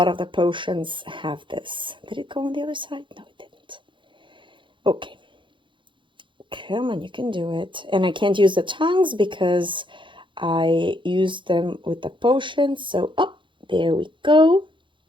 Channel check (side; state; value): left; late; 0.24 ms